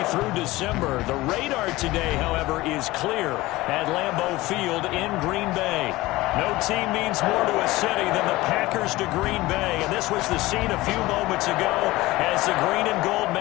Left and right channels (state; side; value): quieter; right; 19.1 dB